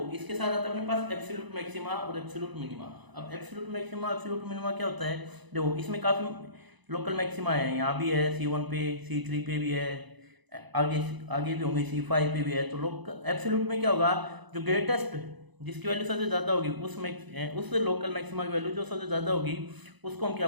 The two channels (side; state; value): left; late; 1.0 ms